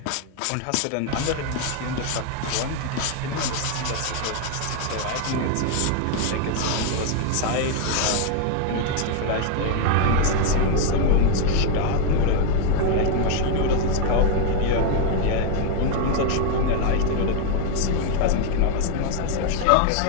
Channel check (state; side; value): different; both; correlation 0.00